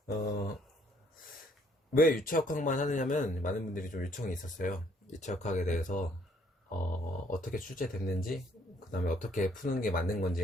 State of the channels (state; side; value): normal; both; correlation 0.65